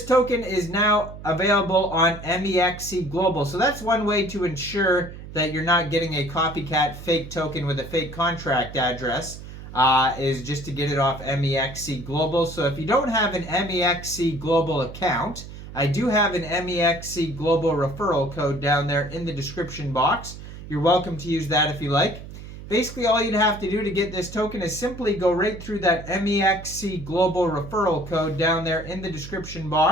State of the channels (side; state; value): right; noise; hum, 13 dB below the sound